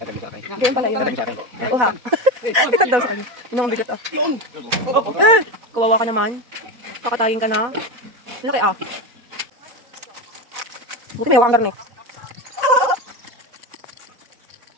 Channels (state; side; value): late; left; 4.1 ms